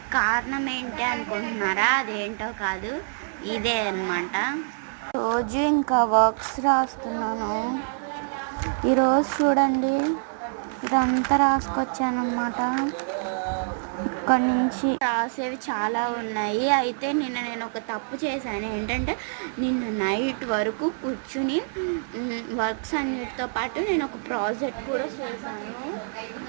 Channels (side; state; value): left; silent; 61 dB below the other